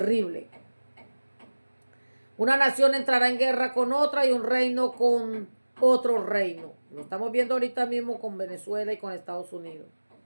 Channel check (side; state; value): both; inverted; correlation -1.00